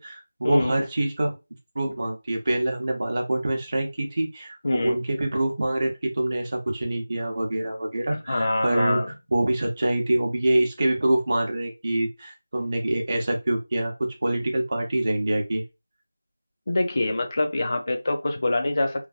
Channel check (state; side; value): inverted; both; correlation -0.97